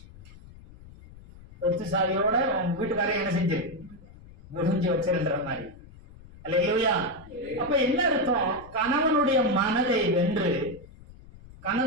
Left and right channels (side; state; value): left; noise; rumble, 20 dB below the sound